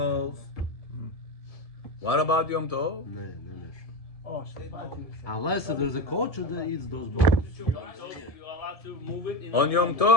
What about Yom Tov? No. Unless there's a culture that eats those bones. You're allowed to move it in On Yom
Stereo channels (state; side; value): late; right; 1.7 ms